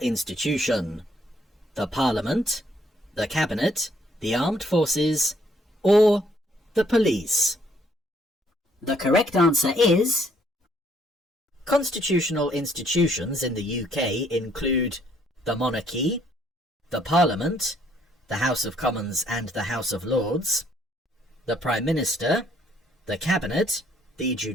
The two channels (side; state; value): both; normal; correlation 0.67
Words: The Parliament, the Cabinet, the Armed Forces, or the Police? The correct answer is... Constitutional institutions in the UK include the monarchy, the Parliament, the House of Commons and the House of Lords, the Prime Minister, the Cabinet, the